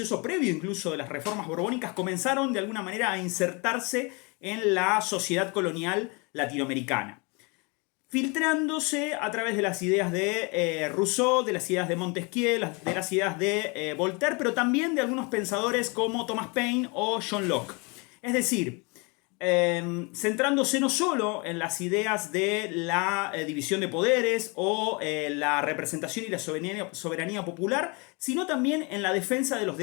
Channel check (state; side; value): quieter; right; 30.3 dB